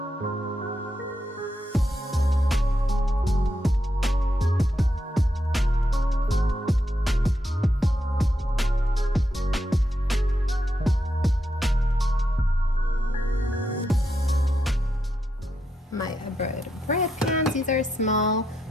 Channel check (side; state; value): both; normal; correlation 0.83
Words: My bread pans, these are small.